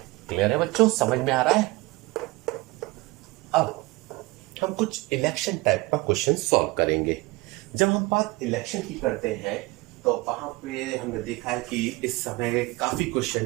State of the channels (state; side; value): quieter; left; 22.4 dB